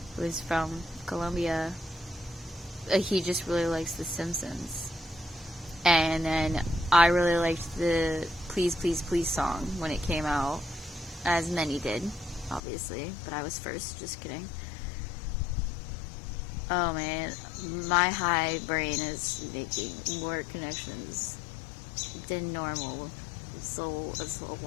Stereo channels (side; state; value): right; drops out; at 12.6 s